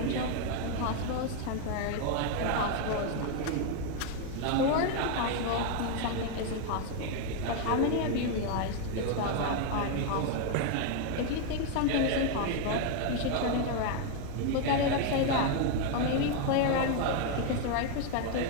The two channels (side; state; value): both; different; correlation 0.01